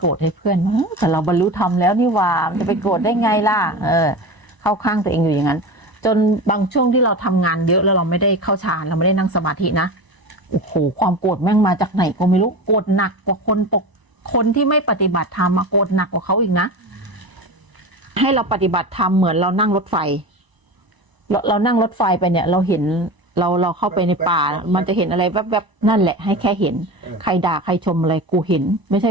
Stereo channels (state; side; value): late; left; 1.0 ms